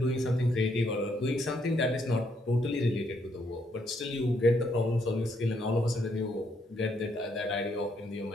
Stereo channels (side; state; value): both; normal; correlation 0.73